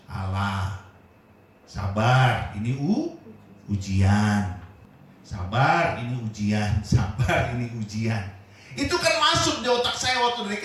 Allah. Sabar, ini ujian. Sabar, ini ujian. Sabar, ini ujian. Itu kan masuk di otak saya waktu dari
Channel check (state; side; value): identical; both; correlation 1.00